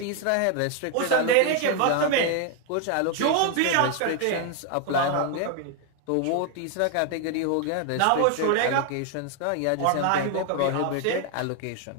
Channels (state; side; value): different; both; correlation 0.01